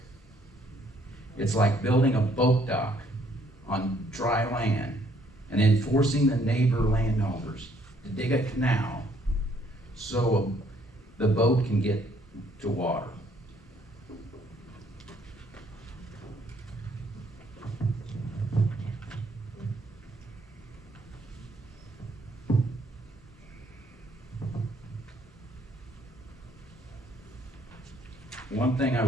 It's like building a boat dock on dry land and then forcing the neighbor landowners to dig a canal so the boat can get to water. One thing I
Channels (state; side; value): normal; both; correlation 0.65